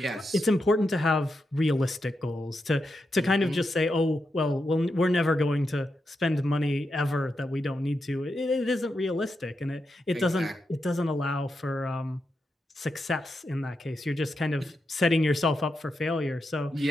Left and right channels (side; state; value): both; normal; correlation 0.86